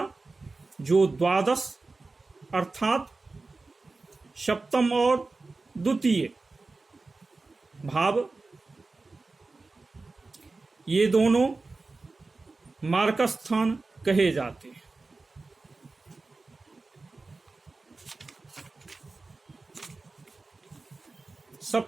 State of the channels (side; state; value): left; quieter; 3.6 dB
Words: जो द्वादश अर्थात सप्तम और द्वितीय भाव, ये दोनों मारकस्थान कहे जाते हैं।